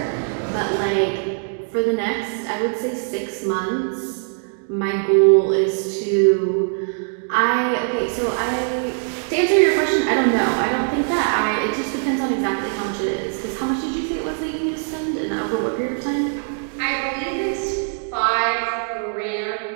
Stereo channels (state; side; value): silent; left; 64 dB below the other